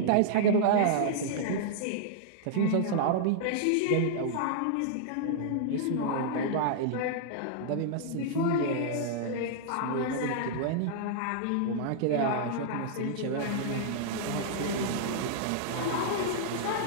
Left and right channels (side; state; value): both; different; correlation -0.01